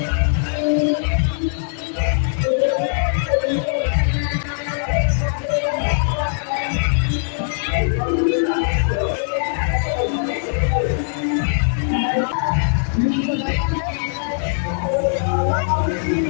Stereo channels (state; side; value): silent; right; digital silence